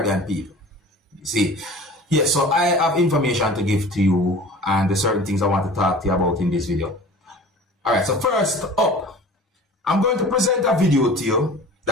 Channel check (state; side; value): normal; both; correlation 0.42